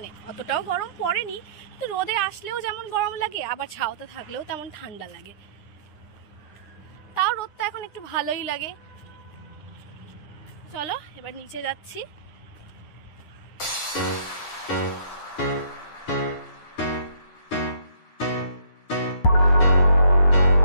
অতটাও গরম পড়েনি, তো রোদে আসলেও যেমন গরম লাগে, আবার ছাওতে থাকলেও তেমন ঠান্ডা লাগে। তাও রোদটা এখন একটু ভালোই লাগে। চলো এবার নিচে যাচ্ছি।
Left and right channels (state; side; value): late; right; 9.8 ms